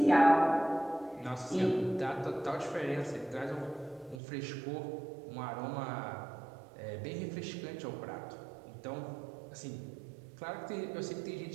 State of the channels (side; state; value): left; drops out; at 4.2 s